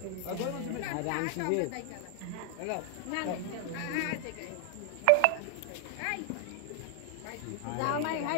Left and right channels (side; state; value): both; different; correlation 0.00